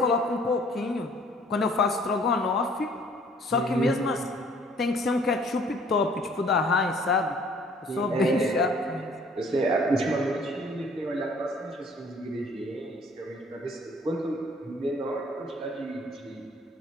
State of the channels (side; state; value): both; normal; correlation 0.57